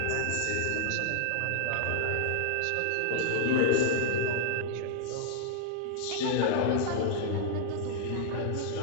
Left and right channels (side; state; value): both; different; correlation -0.01